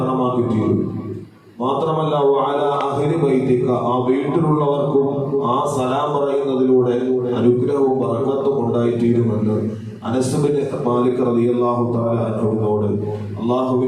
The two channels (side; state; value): both; identical; correlation 1.00